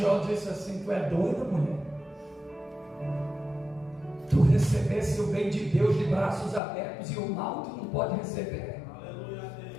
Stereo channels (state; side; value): drops out; right; at 6.6 s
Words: disse assim: tu é doida, mulher? Tu recebesse o bem de Deus de braços abertos e o mal tu não pode receber.